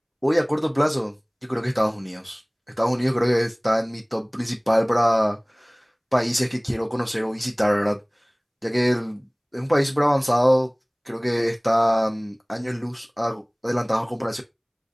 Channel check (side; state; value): both; identical; correlation 1.00